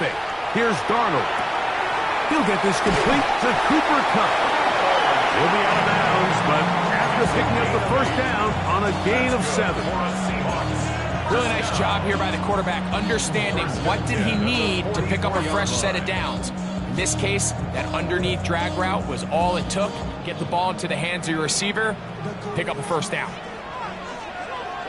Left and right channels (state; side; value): identical; both; correlation 1.00